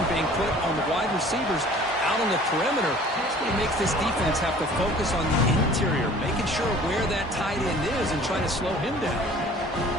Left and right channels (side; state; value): both; normal; correlation 0.49